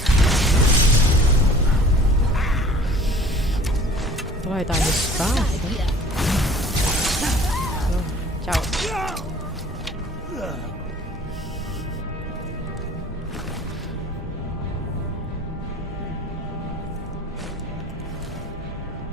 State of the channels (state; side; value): normal; both; correlation 0.48